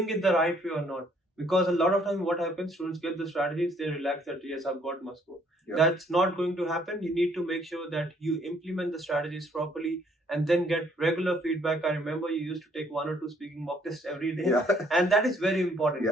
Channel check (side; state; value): both; normal; correlation 0.65